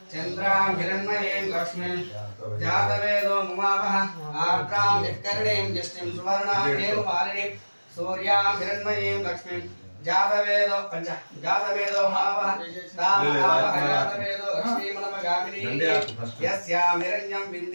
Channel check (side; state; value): both; inverted; correlation -1.00